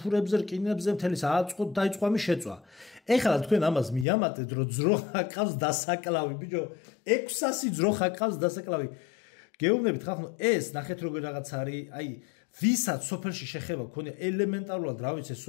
რკინებზე, მთელი სააწყოთ დაიწყო ამის შეწვა. ეხლა თქვენ ამას მიამატეთ, რომ ძროხა ყავს დასაკლავი, ბიჭო, 600 ძროხა ყავს დასაკლავი. გეუბნებით ხალხო, ეს ნახეთ როგორ რაღაც არის, აი, ვისაც სოფელში შეხება ქონია ელემენტარულად, რა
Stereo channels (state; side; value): drops out; right; at 4.0 s